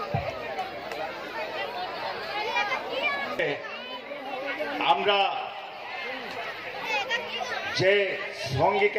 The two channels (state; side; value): identical; both; correlation 1.00